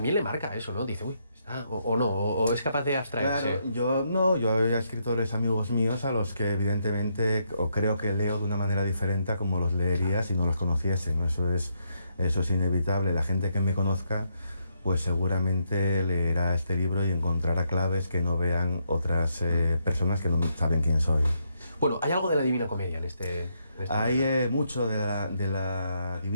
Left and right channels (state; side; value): inverted; both; correlation -0.77